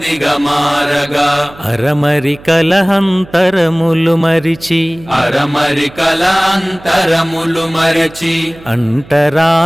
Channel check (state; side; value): noise; right; hum, 21 dB below the sound